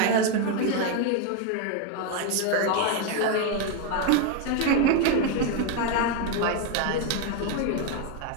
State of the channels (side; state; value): both; different; correlation 0.01